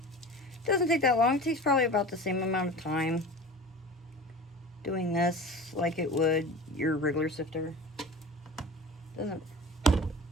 It doesn't take that long. It takes probably about the same amount of time doing this like it would your regular sifter. Doesn't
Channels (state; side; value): normal; both; correlation 0.36